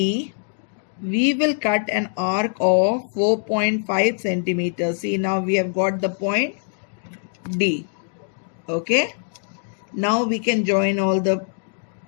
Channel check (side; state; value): right; silent; 64 dB below the other